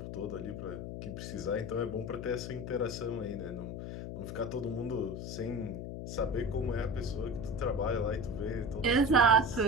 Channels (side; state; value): left; noise; hum, 7 dB below the sound